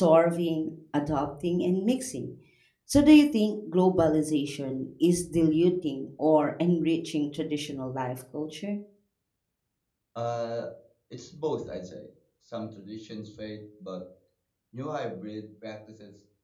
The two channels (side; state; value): both; identical; correlation 1.00